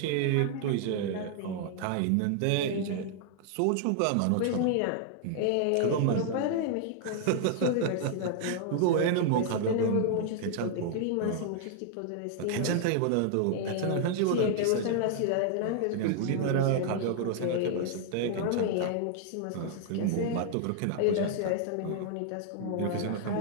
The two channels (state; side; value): different; both; correlation 0.00